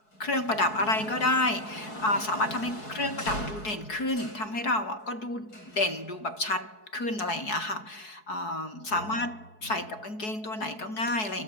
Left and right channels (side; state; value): right; late; 4.7 ms